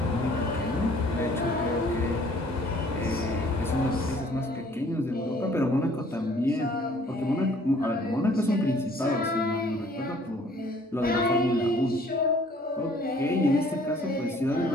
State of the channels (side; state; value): both; normal; correlation 0.57